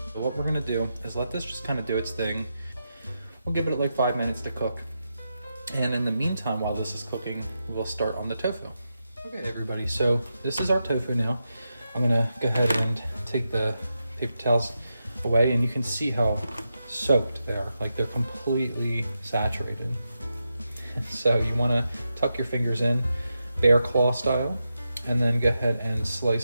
So what we're gonna do is let this just kind of do its thing. We'll give it like 5 minutes to cook. And in the meantime, while this is cooking, we'll start on the tofu. Okay, everybody, so this is our tofu now. I'm gonna go ahead and take the paper towels away, and you can see how soaked they are. Like, they're completely saturated. So you wanna tuck your fingers in, bear claw style, and then go ahead and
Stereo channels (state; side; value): inverted; both; correlation -0.87